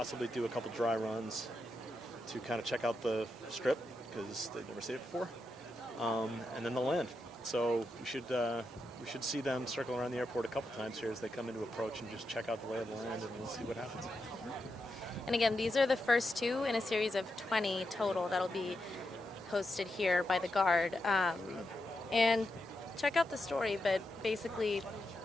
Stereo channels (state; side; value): normal; both; correlation 0.86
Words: do a couple dry runs to kind of check out the strip because they've never seen it before. And then they'll land. So we should see them circle around the airport a couple times here as they come into approach and just check out the lay of the land, and we'll see what happens. And again, these are the first 2 in a series of 20 total that'll be hosted here by the Guard. And check out the story, but basically